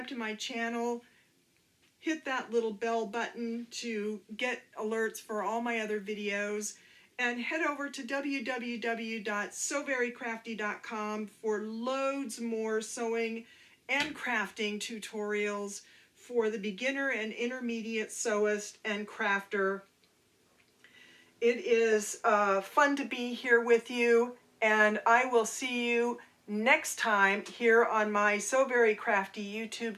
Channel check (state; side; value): identical; both; correlation 1.00